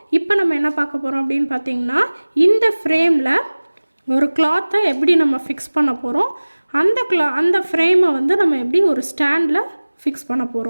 இப்போ நம்ம என்ன பார்க்க போறோம் அப்படினு பாத்தீங்கன்னா இந்த ஃப்ரேம்ல ஒரு cloth எப்படி நம்ம ஃபிக்ஸ் பண்ண போறோம் அந்த ஃப்ரேமை வந்து நம்ம எப்படி ஒரு ஸ்டாண்ட்ல ஃபிக்ஸ் பண்ண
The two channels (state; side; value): inverted; both; correlation -1.00